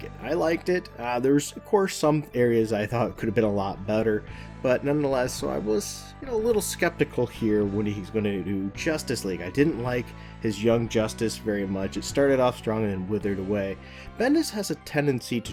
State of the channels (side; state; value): both; identical; correlation 1.00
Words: it. I liked it. There's, of course, some areas I thought could have been a lot better, but nonetheless, so I was, a little skeptical here when he's going to do Justice League. I didn't like his Young Justice very much. It started off strong and then withered away. Bendis has a tendency